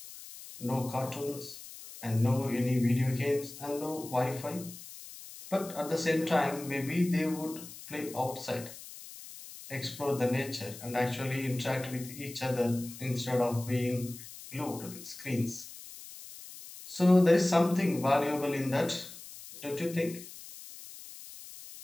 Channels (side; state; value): left; noise; hiss, 15 dB below the sound